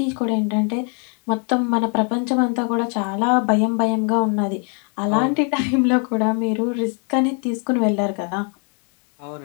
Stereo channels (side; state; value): right; quieter; 39.3 dB